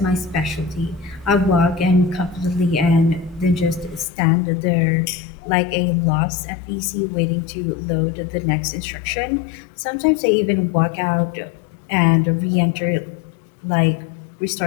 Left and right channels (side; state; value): right; drops out; at 4.0 s